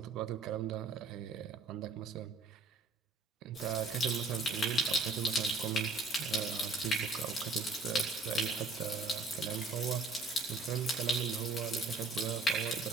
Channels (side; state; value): left; quieter; 3.4 dB